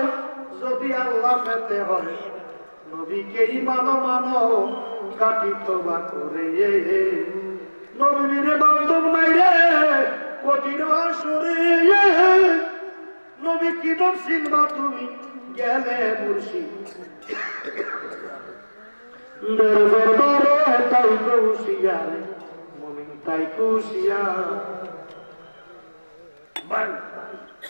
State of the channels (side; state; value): both; inverted; correlation -1.00